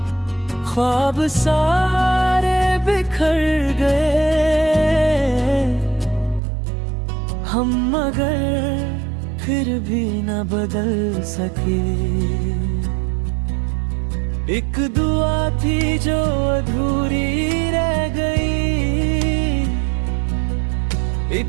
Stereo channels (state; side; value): drops out; left; at 6.4 s